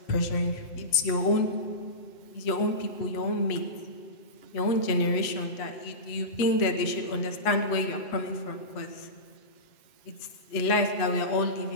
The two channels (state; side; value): late; right; 8.3 ms